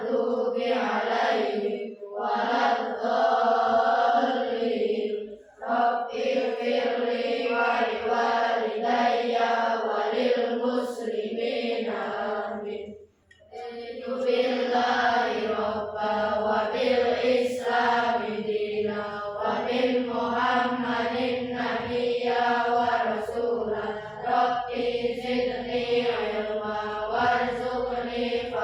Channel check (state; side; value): identical; both; correlation 1.00